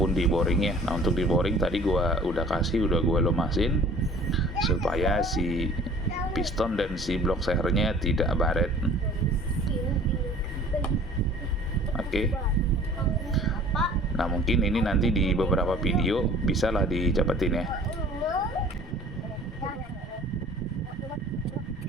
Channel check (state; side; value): normal; both; correlation 0.49